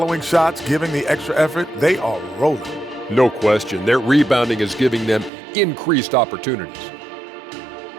shots, giving the extra effort. They are rolling. No question, their rebounding is giving them increased opportunities.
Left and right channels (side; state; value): left; drops out; at 5.3 s